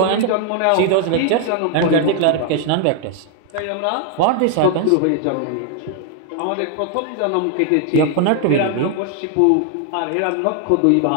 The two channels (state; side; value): different; both; correlation 0.00